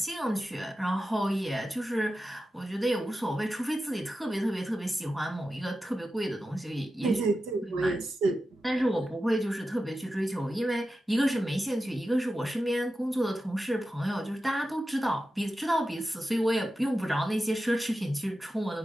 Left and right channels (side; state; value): both; normal; correlation 0.92